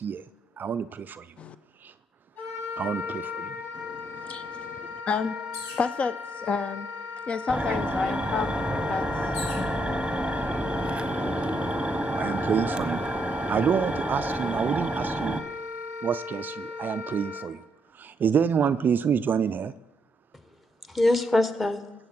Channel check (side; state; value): both; normal; correlation 0.76